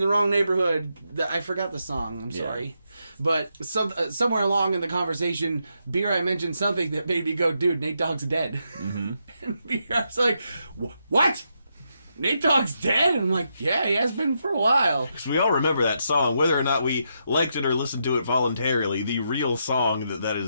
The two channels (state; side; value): inverted; both; correlation -0.81